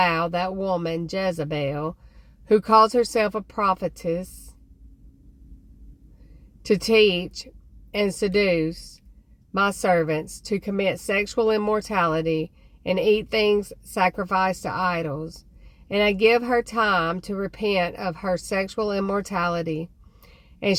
that woman Jezebel, who calls herself a prophetess, to teach and seduce my servants to commit sexual immorality and eat things sacrificed to idols. And I give her time to repent of her sexual immorality, and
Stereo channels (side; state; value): both; identical; correlation 1.00